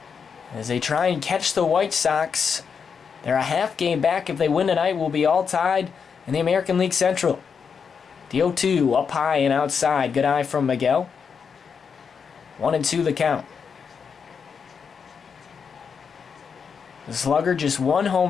as they try and catch the White Sox. They're a half game back. If they win tonight, we'll be all tied in the American League Central. The 0-2 up high and outside. Good eye from Miguel. 1-2 the count. The slugger just 1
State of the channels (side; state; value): right; quieter; 6.3 dB